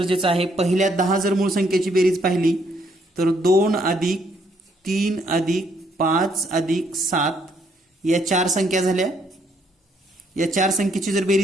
आहे. पहिल्या 10 जर मूळ संख्येची बेरीज पाहिली तर 2 अधिक 3 अधिक 5 अधिक 7 या 4 संख्या झाल्या. या 4 संख्येची जर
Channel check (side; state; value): both; normal; correlation 0.70